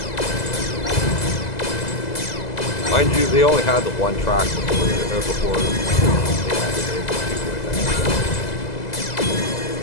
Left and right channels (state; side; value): late; right; 2.0 ms